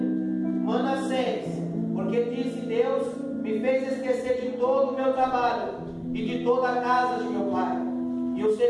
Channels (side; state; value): both; identical; correlation 1.00